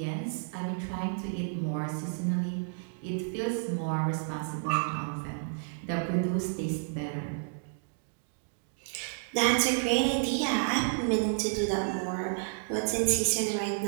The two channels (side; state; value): left; silent; digital silence